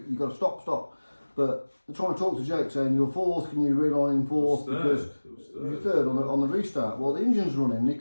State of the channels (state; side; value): inverted; both; correlation -1.00